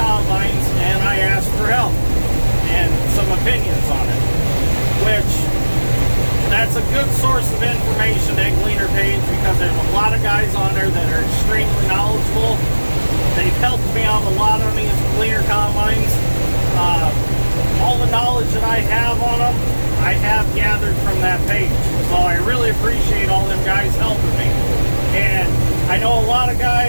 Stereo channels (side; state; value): both; inverted; correlation -1.00